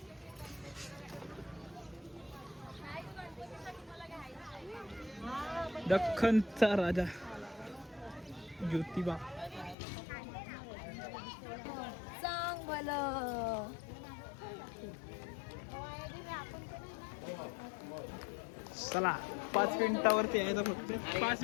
दख्खनचा राजा ज्योतिबा. सांग भलं चला 5 मिनिटावरती यायचं फक्त. 5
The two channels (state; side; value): drops out; right; at 9.8 s